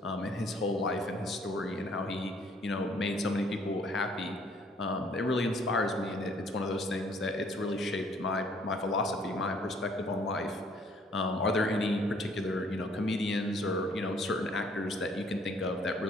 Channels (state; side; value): normal; both; correlation 0.61